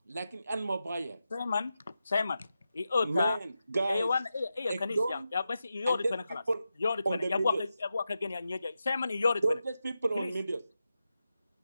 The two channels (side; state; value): both; inverted; correlation -0.90